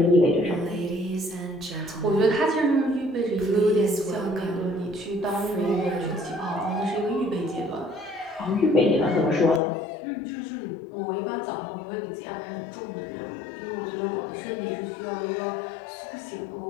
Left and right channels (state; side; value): drops out; right; at 9.6 s